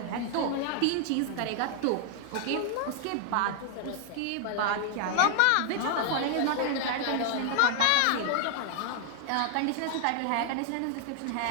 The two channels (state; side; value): different; both; correlation 0.00